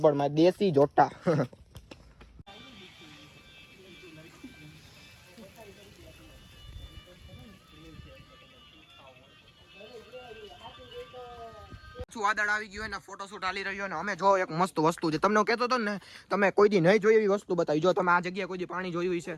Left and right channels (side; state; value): both; identical; correlation 1.00